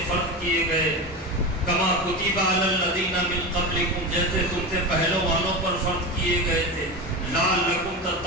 فرض کیے گئے، کما کتب علی الذین من قبلکم، جیسے تم سے پہلوں والوں پر فرض کیے گئے تھے، لعلکم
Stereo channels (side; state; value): both; normal; correlation 0.22